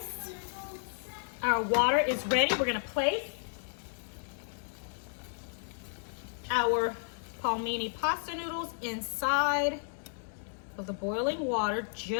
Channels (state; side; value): silent; right; digital silence